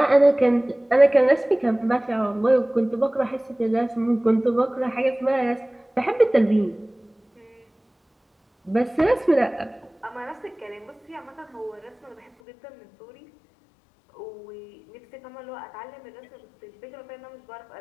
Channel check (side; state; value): right; drops out; at 12.3 s